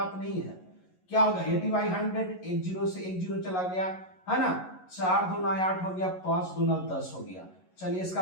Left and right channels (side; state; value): right; late; 11 ms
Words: नहीं है। क्या होगा? 80/100, एक जीरो से एक जीरो चला गया, है ना। 4 दूना 8 हो गया, 5 दूना 10 हो गया। चलिए